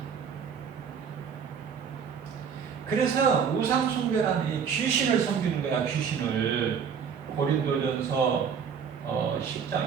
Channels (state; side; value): quieter; left; 7.0 dB